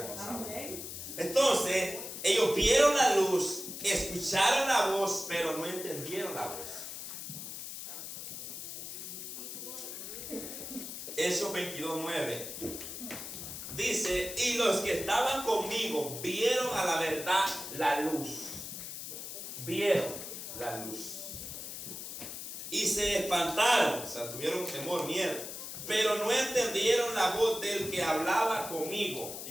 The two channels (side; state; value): left; noise; hiss, 8 dB below the sound